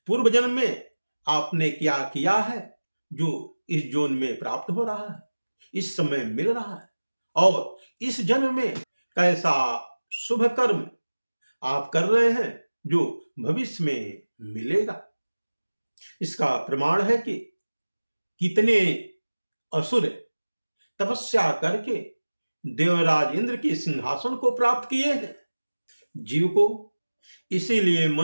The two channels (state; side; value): inverted; both; correlation -1.00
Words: पूर्व जन्म में आपने क्या किया है जो इस जन्म में प्राप्त हो रहा है, इस समय मिल रहा है, और इस जन्म में कैसा शुभ कर्म आप कर रहे हैं जो भविष्य में मिलेगा। इसका प्रमाण है कि कितने असुर तपस्या करके देवराज इंद्र के सिंहासन को प्राप्त किए हैं। जीव को इसीलिए